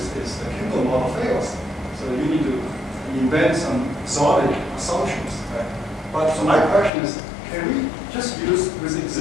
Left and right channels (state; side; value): drops out; right; at 6.9 s